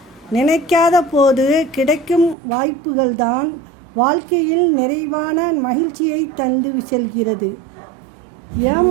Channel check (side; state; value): left; drops out; at 2.4 s